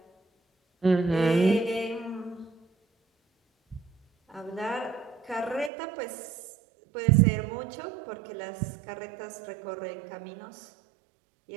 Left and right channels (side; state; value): left; drops out; at 5.7 s